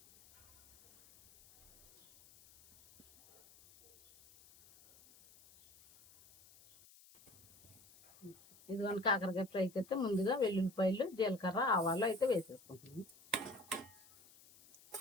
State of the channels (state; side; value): noise; left; hiss, 24 dB below the sound